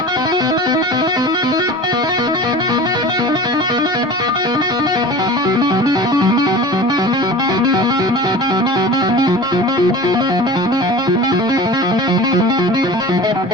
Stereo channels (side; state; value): both; normal; correlation 0.36